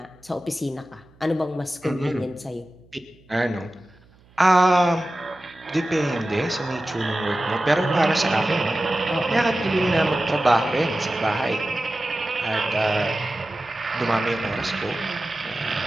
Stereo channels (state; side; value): noise; right; hum, 29 dB below the sound